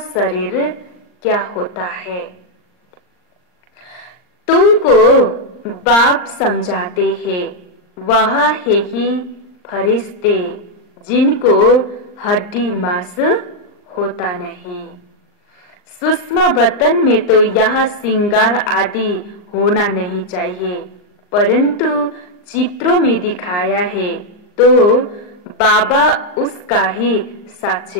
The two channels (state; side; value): late; right; 39 ms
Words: शरीर क्या होता है। तुमको बाप समझाते हैं, वह है ही फरिश्ते जिनको हड्डी मांस होता नहीं। सूक्ष्म बतन में तो यह श्रृंगार आदि होना नहीं चाहिए, परंतु चित्रों में दिखाया है तो बाबा उसका ही